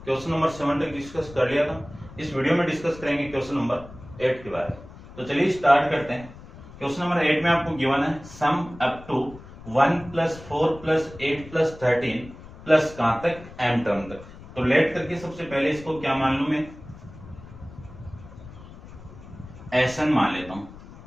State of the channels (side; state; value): left; noise; rumble, 17 dB below the sound